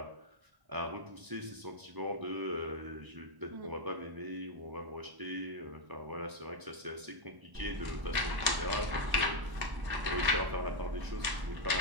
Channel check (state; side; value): late; left; 1.1 ms